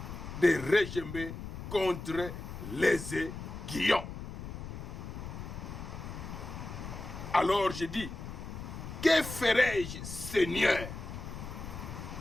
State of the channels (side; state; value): left; noise; rumble, 9 dB below the sound